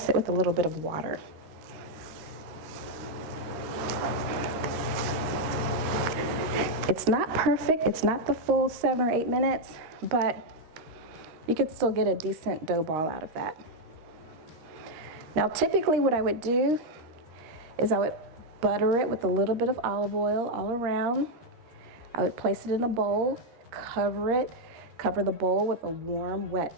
it with a little bit of water. It's not perfect, it's not the full 7 or 8 minutes, but you could still get a decent dough ball out of that. Now typically what I would do is I would butter it with a little bit of olive oil all around. I would place it in a bowl, cover the bowl with a warm,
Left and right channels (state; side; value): late; left; 13 ms